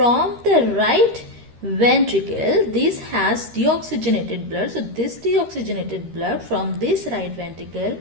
the right ventricle, this has deoxygenated blood. So this deoxygenated blood from this right ventricle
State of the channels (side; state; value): left; late; 13 ms